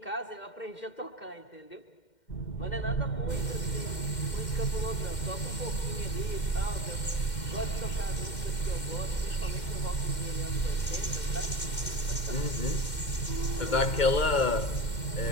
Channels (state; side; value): late; right; 2.1 ms